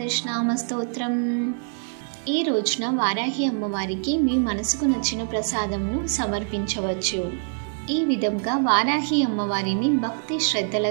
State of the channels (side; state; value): left; silent; 62 dB below the other